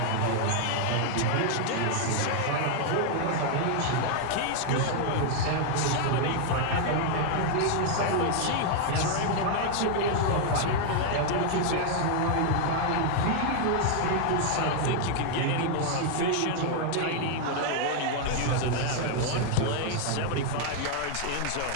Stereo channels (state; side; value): different; both; correlation 0.00